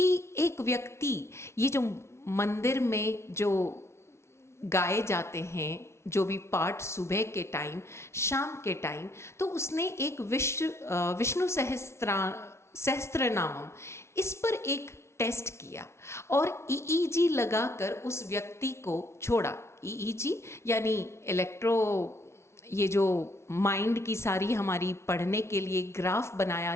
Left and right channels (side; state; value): right; late; 0.13 ms